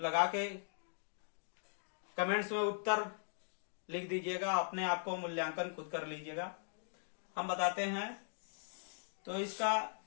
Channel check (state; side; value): silent; right; digital silence